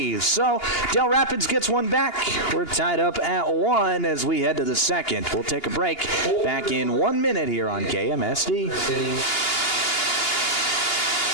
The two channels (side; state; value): right; late; 2.8 ms